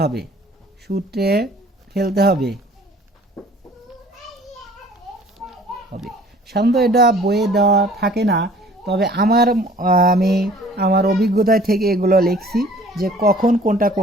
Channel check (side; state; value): both; normal; correlation 0.52